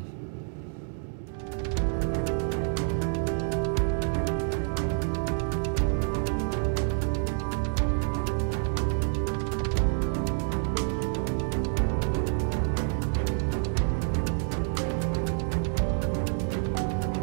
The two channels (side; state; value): left; silent; 59 dB below the other